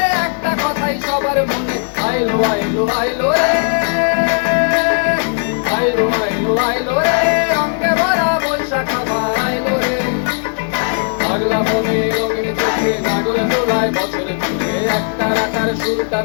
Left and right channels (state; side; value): silent; right; 66 dB below the other